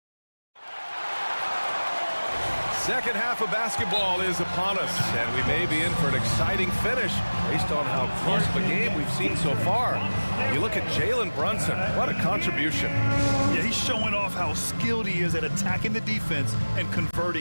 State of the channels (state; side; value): inverted; both; correlation -1.00